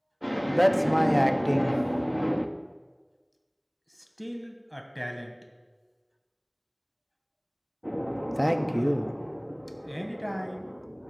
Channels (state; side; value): identical; both; correlation 1.00